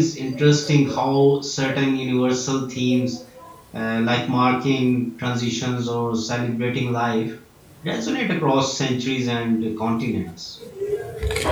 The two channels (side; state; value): both; identical; correlation 1.00